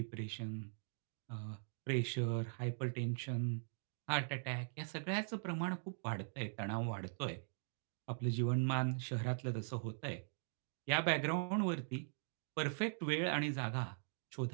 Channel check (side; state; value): left; silent; digital silence